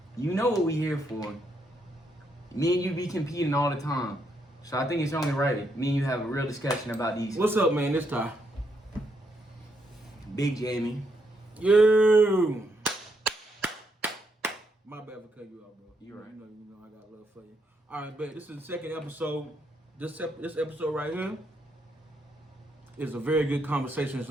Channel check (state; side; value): normal; both; correlation 0.77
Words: You know what we here for. Me and you be competing all the time. So I think it's only right me and you have a real discussion about these. What's up, man? This time. Big Jamie. You. My bad for cutting you off, bro. You right. You know, I got love for you. All right, bet. This is the second episode. This episode right here is a very good conversation. It's